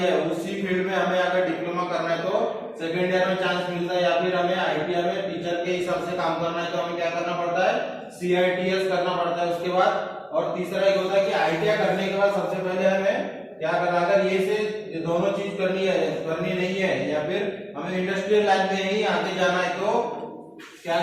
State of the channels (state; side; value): identical; both; correlation 1.00